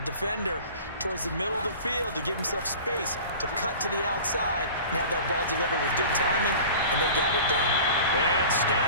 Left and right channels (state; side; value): inverted; both; correlation -0.40